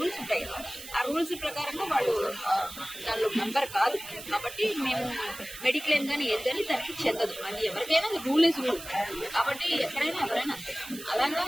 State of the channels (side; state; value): right; noise; hiss, 13 dB below the sound